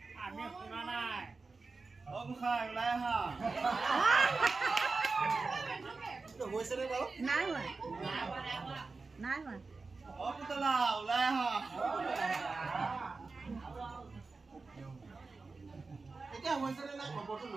আমি শুনা নাই অ গোসাঁই ওলাই আহা হৈছে নে বাৰু নাই হোৱা নাই হোৱা অ পুতলা ওলাই আহা এতিয়া হৈছে নে নাই খবৰটো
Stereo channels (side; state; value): left; quieter; 4.0 dB